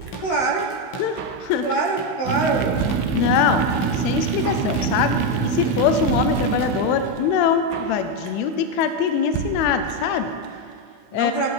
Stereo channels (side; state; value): right; late; 16 ms